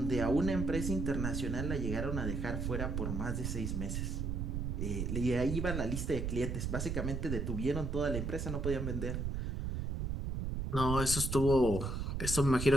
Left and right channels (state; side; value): noise; right; rumble, 2 dB below the sound